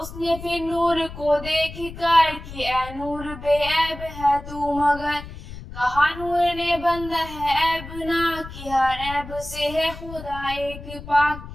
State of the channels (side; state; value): left; noise; rumble, 13 dB below the sound